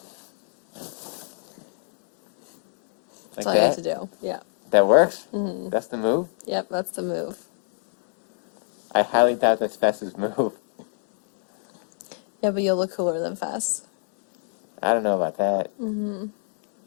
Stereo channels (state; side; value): silent; right; 61 dB below the other